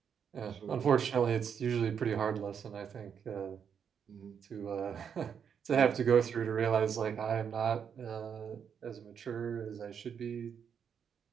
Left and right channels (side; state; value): left; quieter; 7.5 dB